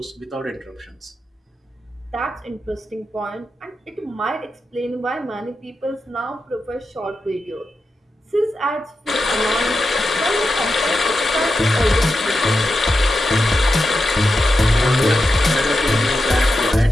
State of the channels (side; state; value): both; normal; correlation 0.89